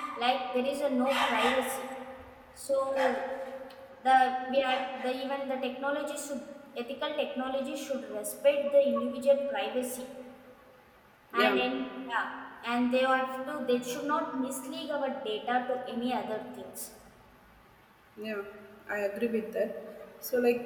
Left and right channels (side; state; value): both; identical; correlation 1.00